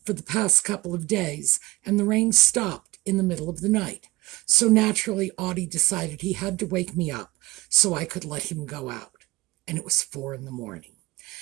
for the past couple of days, and the rain stopped in the middle of the night. So naturally, Audie decided he had to wake me up so I could let him go out. And it was 4 a.m.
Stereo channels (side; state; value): left; quieter; 20.4 dB